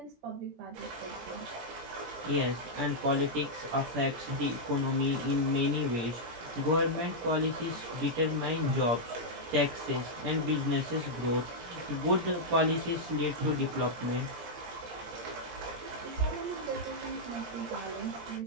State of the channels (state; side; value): late; left; 17 ms